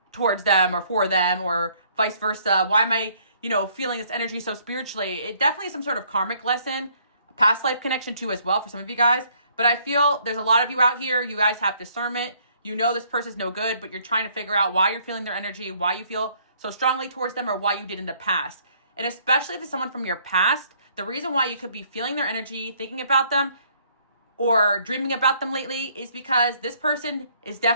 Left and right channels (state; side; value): inverted; both; correlation -0.64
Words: towards them or for them, or vice versa? Why am I, feeling this energy so spiritually? It definitely is some sort of karmic lesson, past life connection too as well for some of you guys. But I feel there's a lot of you out here, you guys have discernment. You know this person's no good, but you're trying to figure out why you're feeling their energy, why you feel so strongly towards them, or why you did in the past. And especially if it's someone from your past, the reason why you could be feeling their energy, thinking about them, or dreaming about them lately is because this person is